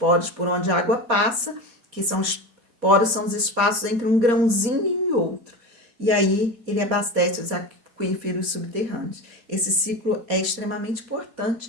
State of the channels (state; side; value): late; left; 4.1 ms